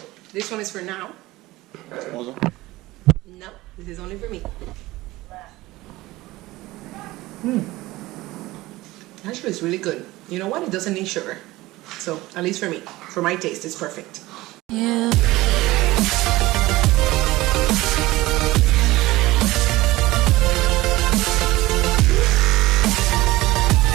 This one is for now. Also? No, this is only for me. Actually, it's really good. You know what? It doesn't need sugar. So, at least for me, for my taste, it's perfect. Yeah.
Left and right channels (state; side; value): quieter; left; 18.8 dB